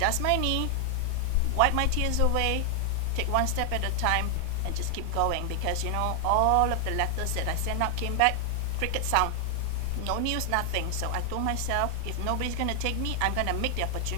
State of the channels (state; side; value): different; both; correlation 0.00